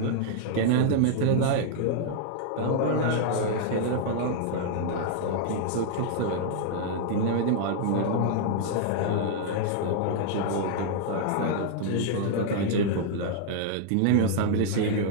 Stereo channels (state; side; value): different; both; correlation -0.01